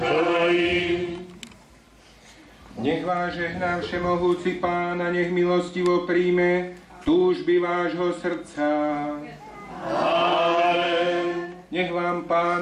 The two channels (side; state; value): both; identical; correlation 1.00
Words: Nech vás žehná všemohúci Pán a nech milostivo príjme túžby vášho srdca. Amen. Nech vám